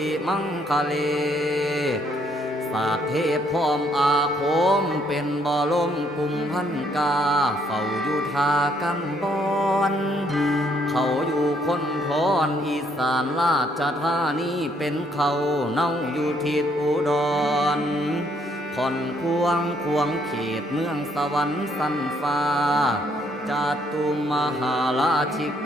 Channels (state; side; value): normal; both; correlation 0.69